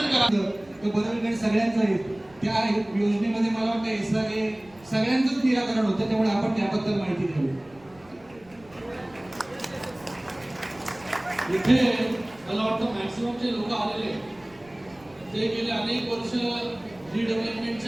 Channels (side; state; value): right; noise; rumble, 27 dB below the sound